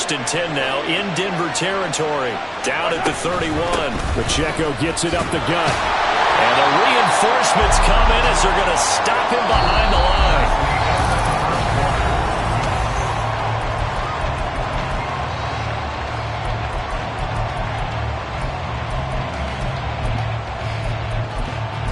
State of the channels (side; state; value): both; identical; correlation 1.00